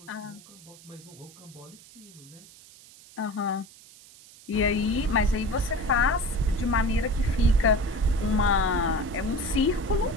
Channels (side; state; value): right; noise; hiss, 22 dB below the sound